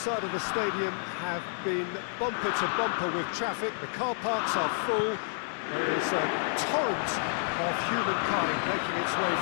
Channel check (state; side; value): silent; right; digital silence